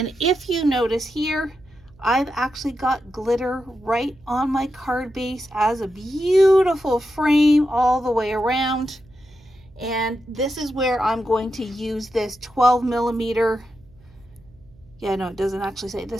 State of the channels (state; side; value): noise; right; hum, 27 dB below the sound